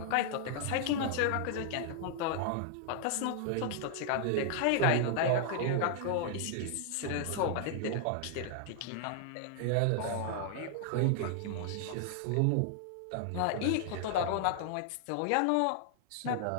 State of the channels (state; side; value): different; both; correlation 0.00